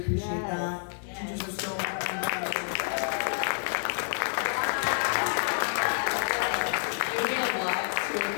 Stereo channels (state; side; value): silent; right; 59 dB below the other